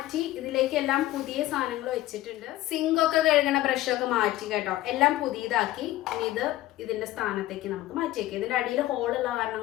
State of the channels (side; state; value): right; quieter; 15.6 dB